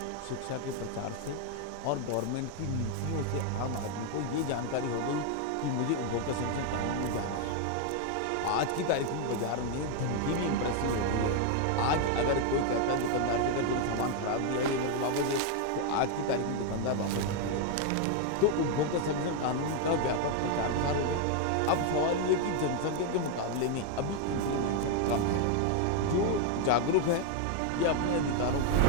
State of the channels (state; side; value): different; both; correlation 0.01